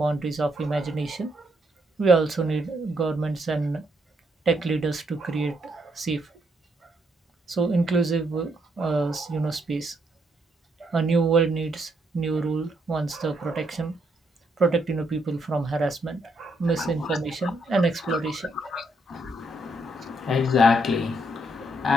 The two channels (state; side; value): normal; both; correlation 0.75